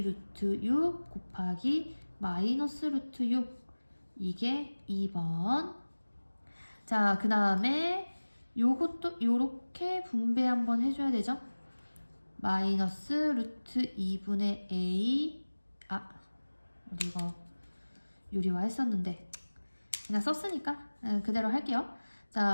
루트 6 곱하기 마이너스 루트 6. 이게 2번. 자, 그 다음에 요것도 요렇게 분배 한번 해줘야 되죠. 마이너스 루트 2분의 A. 우리 이거 유리화 했었는데 그냥 썼으니까 그대로 할게요.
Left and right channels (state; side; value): inverted; both; correlation -1.00